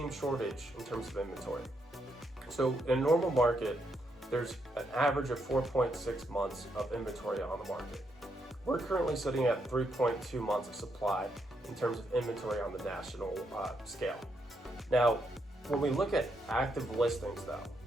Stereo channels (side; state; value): both; normal; correlation 0.79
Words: shortage in terms of inventory. So in a normal market, there's an average of 4.6 months of inventory on the market. We're currently sitting at 3.2 months of supply in terms of inventory on the national scale. Now, when we look at active listings though,